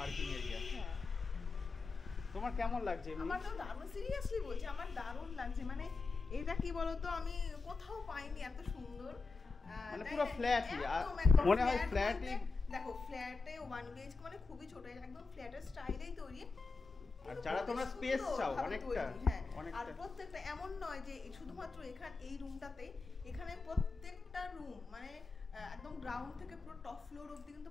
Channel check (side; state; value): right; quieter; 4.1 dB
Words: এরিয়া। তোমার কেমন লাগছে? আমার তো দারুণ, সিরিয়াসলি বলছি, আমার দারুণ লাগছে। মানে এটা কি বলতো, আমি কোথাও পাইনি এত সুন্দর। মানে পুরো ফ্ল্যাটই, মনে হয় ফ্ল্যাটই। দেখো ফ্ল্যাটে 1 BHK মানে খুবই ছোট, একদম ফ্ল্যাটের স্টাইলেই তৈরি। আর যারা তোমরা স্পেস চাও অনেকটা হ্যাঁ, আর প্রত্যেকটা এমন নয় যে শুধুমাত্র এই রুমটাতেই, এখানে প্রত্যেকটা রুম মানে একদম গ্রাউন্ড থেকে পুরো টপ ফ্লোর অবধি